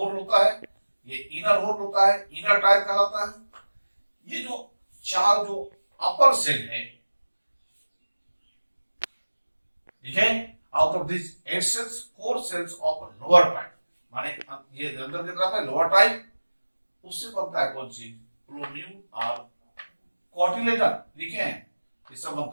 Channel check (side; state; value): both; inverted; correlation -1.00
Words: होता है, ये इनर होल होता है, इनर टायर कहलाता है। ये जो 4 जो अपर सेल है, ठीक है, out of this 8 cells 4 cells of lower type, माने ये अंदर की तरफ है लोअर टाइप, उससे बनता है कौन सी प्लोम्यूल और कॉटिलेडन। लिखे हैं इससे